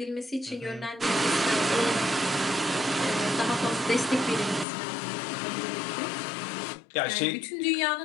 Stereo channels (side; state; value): right; drops out; at 4.7 s